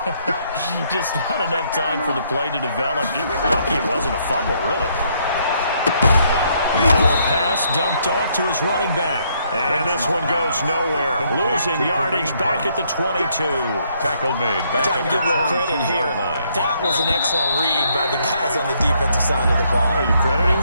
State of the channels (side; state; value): both; inverted; correlation -0.71